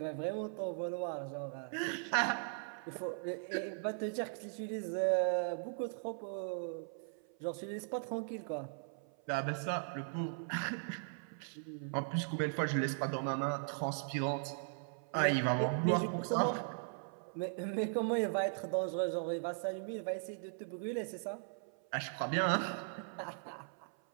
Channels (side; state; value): left; silent; 52 dB below the other